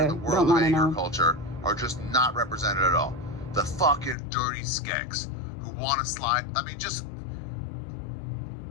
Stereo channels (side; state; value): right; drops out; at 4.2 s